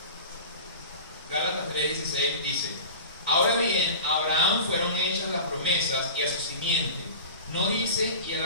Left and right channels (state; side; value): inverted; both; correlation -0.36